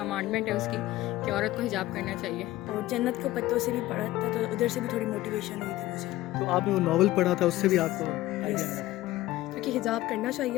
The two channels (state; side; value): quieter; right; 16.4 dB